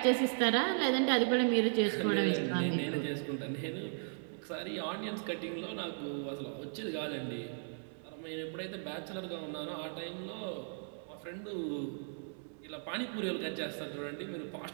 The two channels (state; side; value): silent; left; digital silence